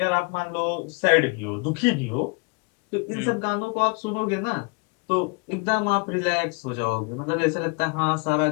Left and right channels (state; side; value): quieter; right; 33.7 dB